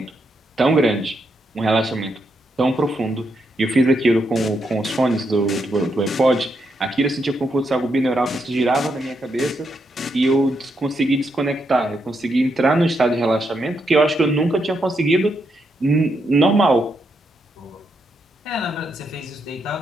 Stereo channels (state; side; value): normal; both; correlation 0.80